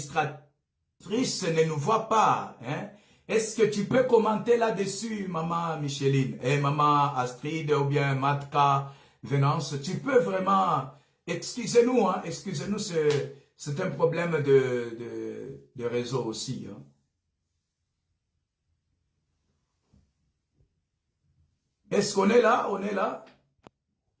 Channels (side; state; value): both; identical; correlation 1.00